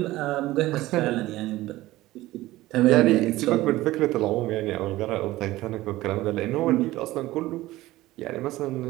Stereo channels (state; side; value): quieter; left; 17.2 dB